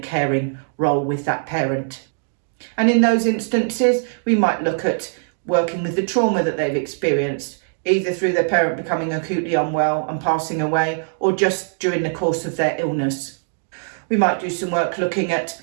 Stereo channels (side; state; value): left; silent; digital silence